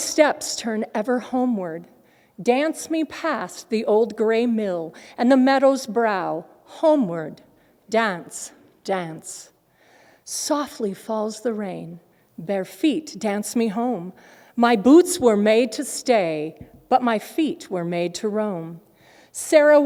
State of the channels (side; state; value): both; identical; correlation 1.00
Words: turn ever homeward. Dance me past the old gray mill and the meadow's brow, homeward, dance, dance. Softly falls the rain, bare feet dance me home. My boots were made to stay, but my feet were made to roam. Sarah